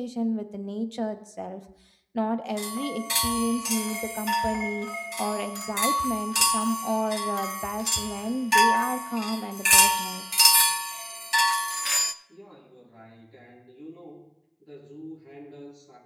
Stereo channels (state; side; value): identical; both; correlation 1.00